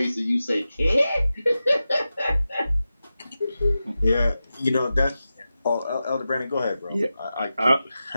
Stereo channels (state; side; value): inverted; both; correlation -0.92